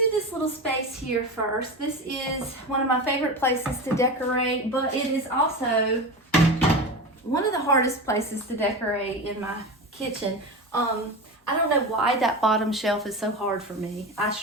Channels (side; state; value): both; normal; correlation 0.25